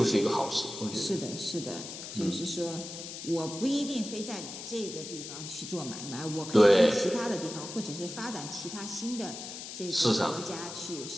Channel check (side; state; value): left; noise; hiss, 9 dB below the sound